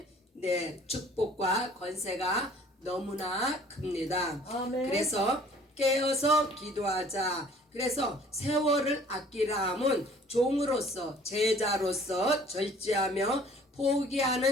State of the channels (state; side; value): normal; both; correlation 0.53